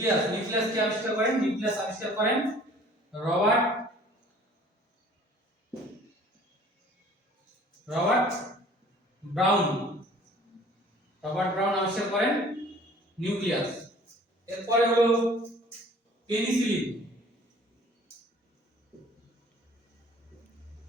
নিউক্লিয়াস কে আবিষ্কার করেন? নিউক্লিয়াস আবিষ্কার করেন রবার্ট ব্রাউন, রবার্ট ব্রাউন আবিষ্কার করেন নিউক্লিয়াস। এরপরে হলো পেনিসিলিন,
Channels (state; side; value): normal; both; correlation 0.51